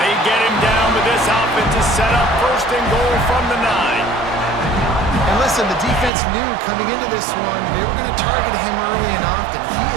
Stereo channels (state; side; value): drops out; left; at 6.1 s